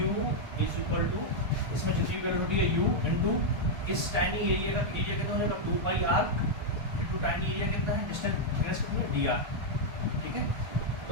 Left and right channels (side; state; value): left; late; 1.3 ms